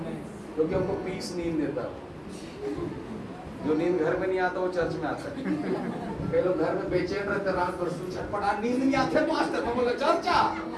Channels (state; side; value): identical; both; correlation 1.00